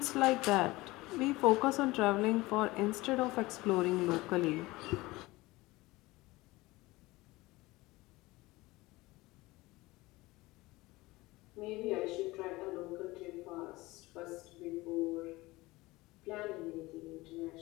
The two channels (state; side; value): quieter; right; 20.5 dB